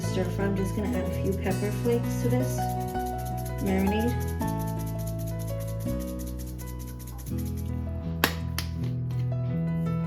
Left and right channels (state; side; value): identical; both; correlation 1.00